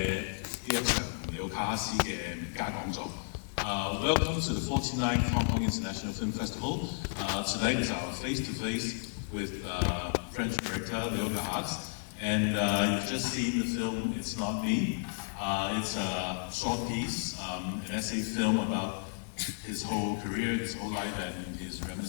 呢一場尼奧卡哈斯嘅名家講座。Welcome to the 49th Hong Kong International Film Festival. Tonight is our face-to-face with French director Leo Garrats. And you've just seen the film It's Not Me. It's a short piece, an essay film about his whole career, his whole life, and his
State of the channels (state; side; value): silent; right; digital silence